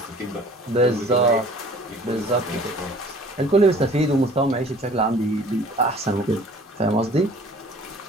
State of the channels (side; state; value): both; normal; correlation 0.50